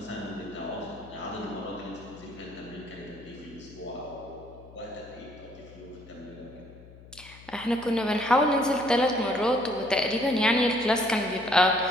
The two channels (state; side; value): noise; left; hum, 20 dB below the sound